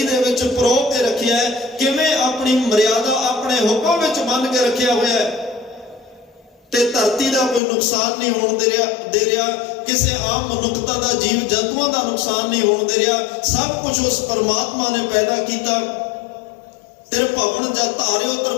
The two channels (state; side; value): drops out; right; at 7.6 s